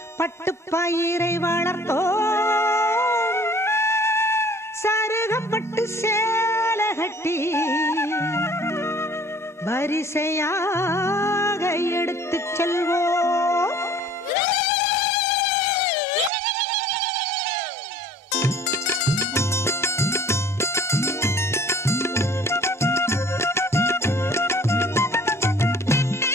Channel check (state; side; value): normal; both; correlation 0.52